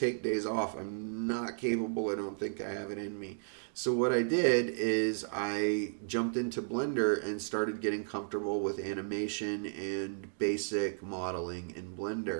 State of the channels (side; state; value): left; silent; digital silence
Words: days off. I'm not capable. I don't think I have it in me. So what I did is I jumped into Blender and started getting comfortable with animation and basic modeling in